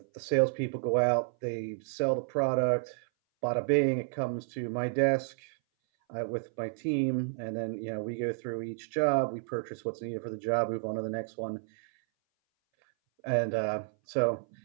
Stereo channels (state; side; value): silent; left; 57 dB below the other